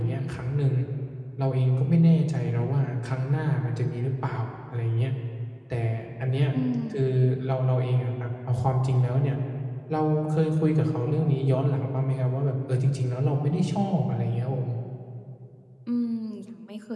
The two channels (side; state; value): both; identical; correlation 1.00